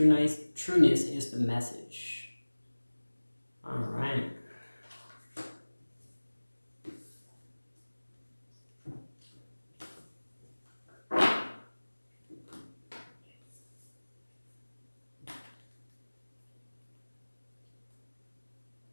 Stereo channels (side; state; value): both; inverted; correlation -1.00